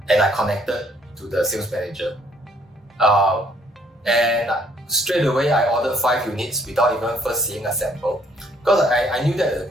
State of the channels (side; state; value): both; normal; correlation 0.65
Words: And I connected to the sales manager. And straight away I ordered 5 units without even first seeing a sample. Because I knew that